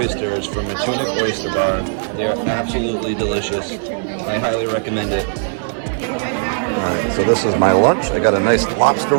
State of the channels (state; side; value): silent; left; 60 dB below the other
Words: from Matunuck Oyster Bar. They are absolutely delicious. I highly recommend it. Alright, so this is my lunch. I got a nice lobster